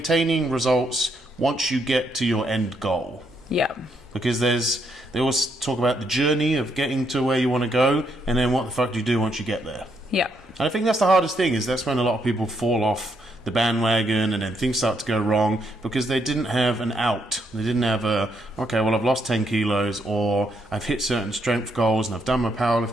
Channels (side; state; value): both; normal; correlation 0.76